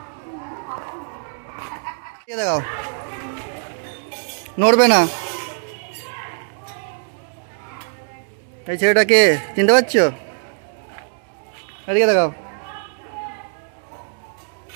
দেখাও নড়বে না এই ছেলেটাকে চিনতে পারছো এদিকে দেখাও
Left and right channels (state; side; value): silent; left; 62 dB below the other